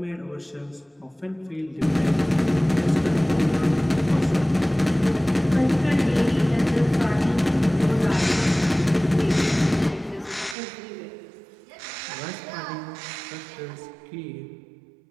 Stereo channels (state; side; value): drops out; left; at 10.6 s